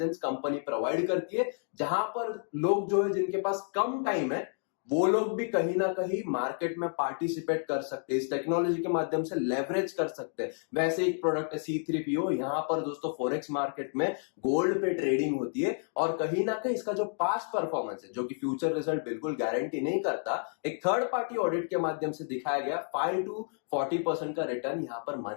कंपनी प्रोवाइड करती है, जहां पर लोग जो है जिनके पास कम टाइम है वो लोग भी कहीं ना कहीं मार्केट में पार्टिसिपेट कर सकते हैं, इस टेक्नोलॉजी के माध्यम से लेवरेज कर सकते हैं। वैसे एक प्रोडक्ट है C3PO, यहाँ पर दोस्तों फॉरेक्स मार्केट में गोल्ड पे ट्रेडिंग होती है, और कहीं ना कहीं इसका जो पास्ट परफॉर्मेंस है, जो कि फ्यूचर रिजल्ट बिल्कुल गारंटी नहीं करता, एक थर्ड पार्टी ऑडिट के माध्यम से दिखाया गया 5 to 40% का रिटर्न यहाँ पर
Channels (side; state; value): right; silent; 57 dB below the other